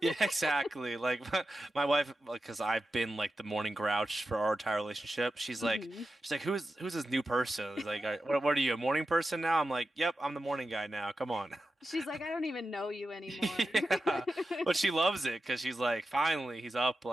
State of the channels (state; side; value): normal; both; correlation 0.91